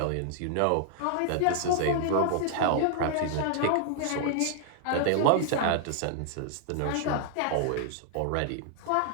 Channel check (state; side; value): different; both; correlation -0.01